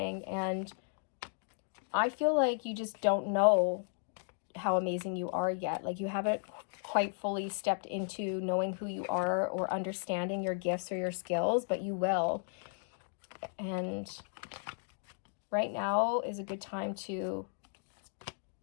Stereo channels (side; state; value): right; silent; digital silence